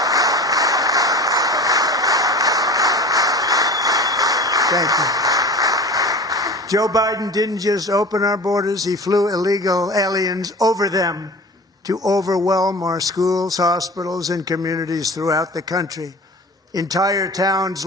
Thank you. Joe Biden didn't just open our borders, he flew illegal aliens over them to overwhelm our schools, hospitals, and communities throughout the country. Entire towns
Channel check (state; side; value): normal; both; correlation 0.37